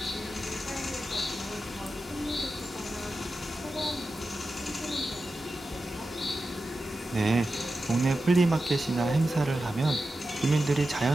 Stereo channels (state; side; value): normal; both; correlation 0.92